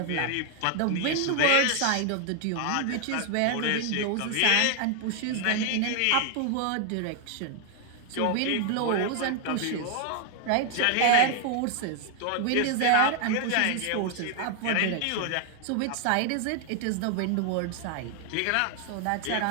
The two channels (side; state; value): both; different; correlation 0.00